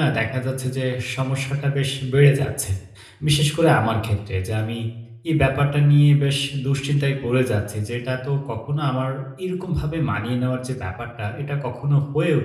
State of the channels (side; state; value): both; identical; correlation 1.00